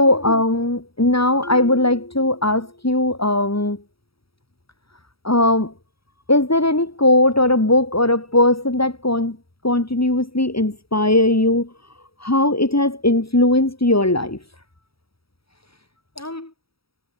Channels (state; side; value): late; right; 0.76 ms